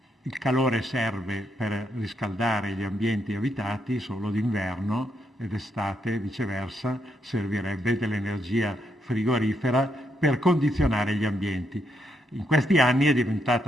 il calore serve per riscaldare gli ambienti abitati solo d'inverno, ed estate, viceversa, servirebbe dell'energia frigorifera per condizionare gli ambienti. In questi anni è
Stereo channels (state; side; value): normal; both; correlation 0.78